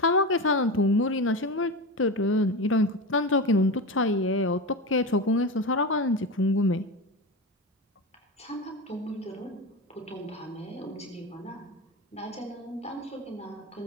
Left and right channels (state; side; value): normal; both; correlation 0.22